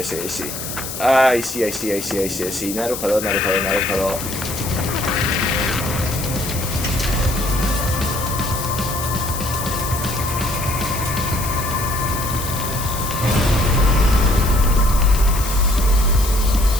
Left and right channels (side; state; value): left; noise; hiss, 7 dB below the sound